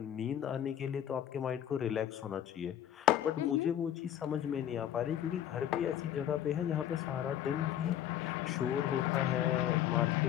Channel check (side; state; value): right; quieter; 10.8 dB